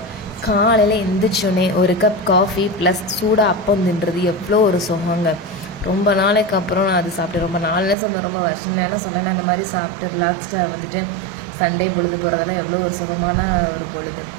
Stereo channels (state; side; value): drops out; left; at 8.0 s